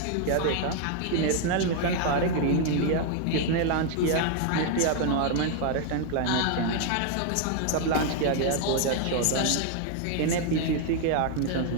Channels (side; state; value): both; different; correlation 0.00